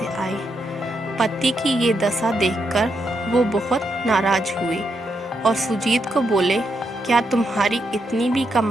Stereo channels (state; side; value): normal; both; correlation 0.81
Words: आए। पति की ये दशा देखकर वो बहुत नाराज हुए और सुजीत को बोले, क्या तुम्हारी इतनी भी